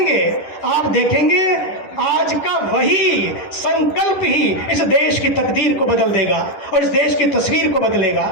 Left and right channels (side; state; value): right; late; 10 ms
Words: आप देखेंगे आज का वही संकल्प ही इस देश की तकदीर को बदल देगा और इस देश की तस्वीर को बदलेगा।